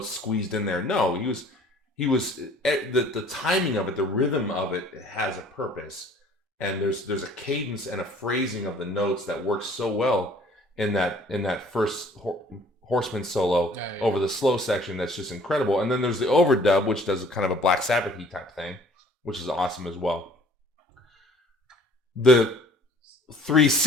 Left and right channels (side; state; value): both; normal; correlation 0.53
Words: squeezed in there. No, he was the timing of it, the rhythm of it has a purpose, and there's a cadence and a phrasing of the notes that works so well in that first Horseman solo over the slow section. That's just incredible. And then there's the overdub, which does kind of a Black Sabbath-y type thing, which is awesome as well. The